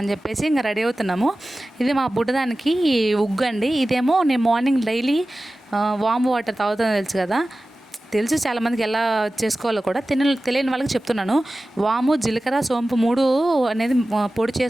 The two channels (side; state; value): both; normal; correlation 0.96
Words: చెప్పేసి ఇంకా రెడీ అవుతున్నాము. ఇది మా బుడ్డదానికి ఉగ్గు అండి. ఇదేమో నేను మార్నింగ్ డైలీ వామ్ వాటర్ తాగుతుందో తెలుసు కదా, తెలుసు చాలామందికి ఎలా చేసుకోవాలో కూడా. తెలియని వాళ్ళకి చెప్తున్నాను. వాము, జీలకర్ర, సోంపు 3 అనేది పొడి